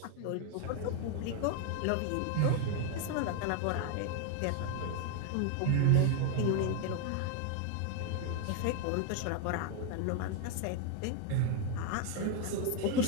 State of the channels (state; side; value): different; both; correlation 0.01